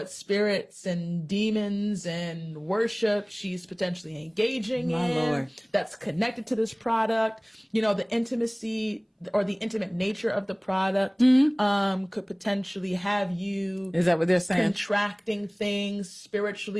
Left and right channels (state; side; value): identical; both; correlation 1.00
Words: spirits and demons and worship she's potentially engaging in that's connected to this product. You know, the intimacy or the intimate nature of the product could potentially have you, is that what they're saying? Contracting things